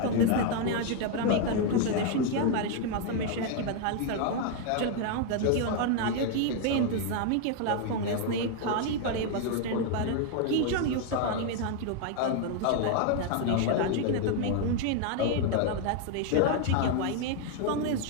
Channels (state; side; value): different; both; correlation 0.00